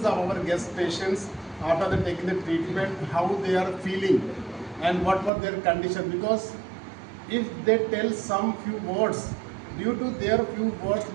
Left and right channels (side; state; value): left; drops out; at 5.3 s